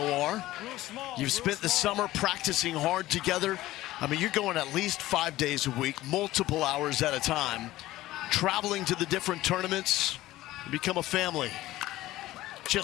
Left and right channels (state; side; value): quieter; right; 16.3 dB